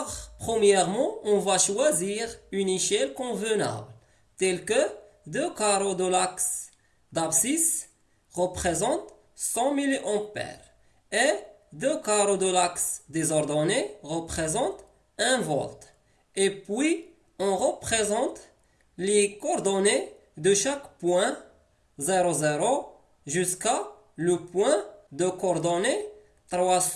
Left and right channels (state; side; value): identical; both; correlation 1.00